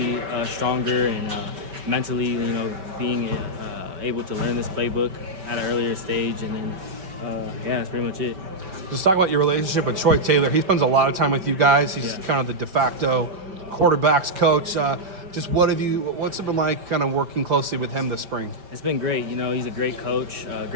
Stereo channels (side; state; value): left; late; 4.9 ms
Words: stronger and mentally, being able to learn this playbook at an earlier stage, and then that's pretty much it. Just talk about your relationship with Troy Taylor. He spends a lot of time with you guys. He's kind of the de facto quarterbacks coach. Just what's it been like kind of working closely with him this spring? It's been great. He's a great coach,